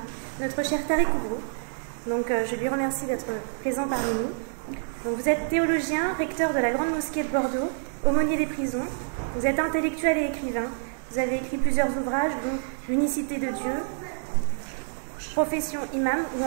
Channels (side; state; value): left; silent; 60 dB below the other